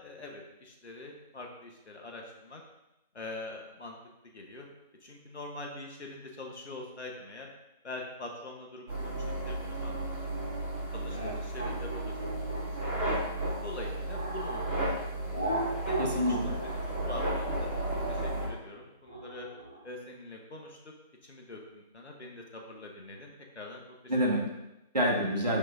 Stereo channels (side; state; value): both; inverted; correlation -0.48